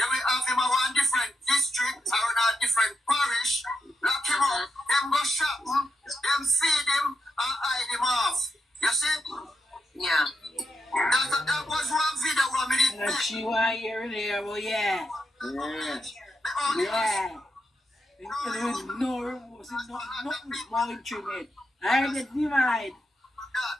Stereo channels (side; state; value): both; normal; correlation 0.84